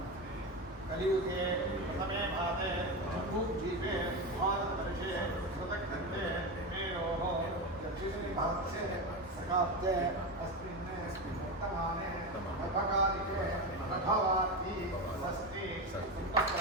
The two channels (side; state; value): both; normal; correlation 0.18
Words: कलियुगे प्रथमे भागे जम्बूद्वीपे भारतवर्षे कृतघ्नते मेरोः दक्षिणे भागे सकाब्दे अस्मिन् वर्तमाने नभकालिके नभवार्ति षष्ठी